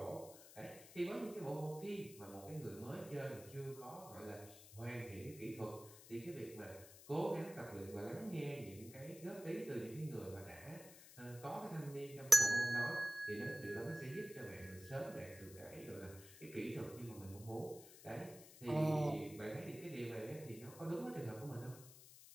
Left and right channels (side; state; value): left; noise; hiss, 17 dB below the sound